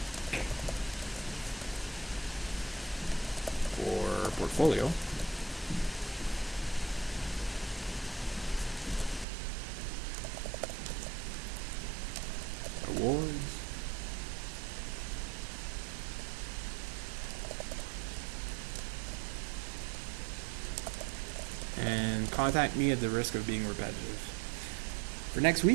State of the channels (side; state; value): left; drops out; at 9.2 s